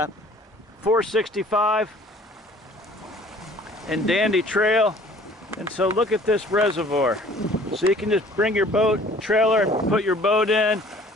and Dandy Trail. And so look at this reservoir. So you can just bring your boat trailer and put your boat in.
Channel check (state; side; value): normal; both; correlation 0.52